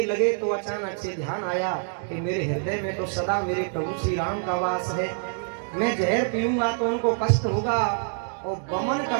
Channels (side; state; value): left; silent; 60 dB below the other